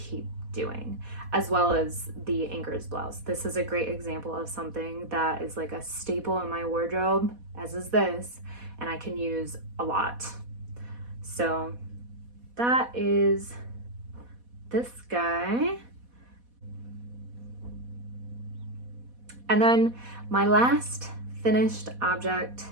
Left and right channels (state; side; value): late; left; 4.1 ms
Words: doing, as well as the Anker's blouse. This is a great example of something that is like a staple in my wardrobe, as is this, and I can use a lot. So that is this guy. And then My last finished object